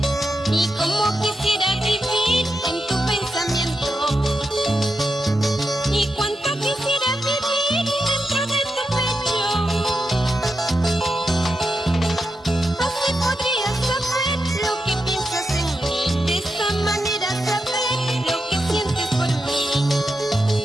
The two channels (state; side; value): normal; both; correlation 0.87